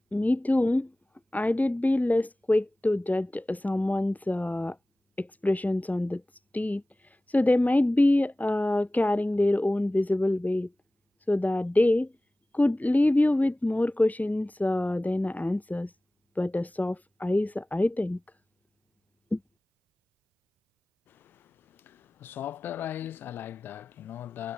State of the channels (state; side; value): normal; both; correlation 0.98